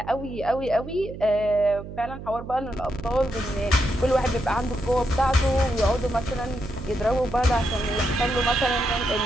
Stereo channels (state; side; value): noise; right; hum, 11 dB below the sound